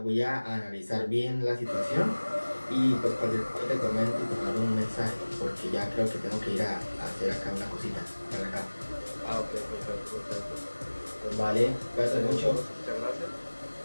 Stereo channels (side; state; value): both; inverted; correlation -1.00